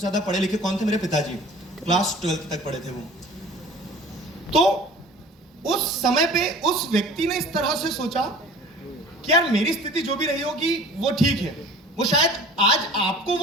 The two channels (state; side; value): normal; both; correlation 0.45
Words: पढ़े लिखे कौन थे? मेरे पिताजी। क्लास 12 तक पढ़े थे वो। तो उस समय पे उस व्यक्ति ने इस तरह से सोचा कि यार मेरी स्थिति जो भी रही होगी वो ठीक है। वो शायद आज आपको